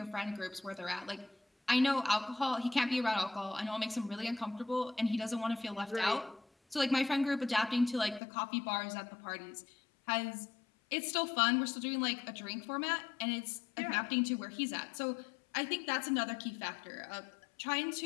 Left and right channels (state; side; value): drops out; right; at 8.2 s